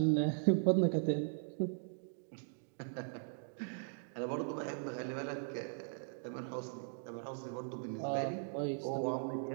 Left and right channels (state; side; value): silent; left; digital silence